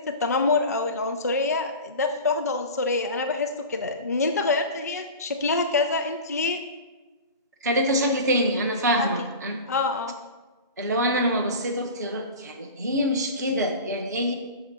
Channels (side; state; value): both; inverted; correlation -0.33